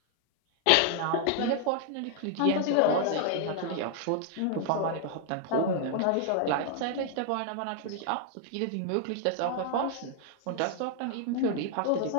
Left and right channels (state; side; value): different; both; correlation 0.00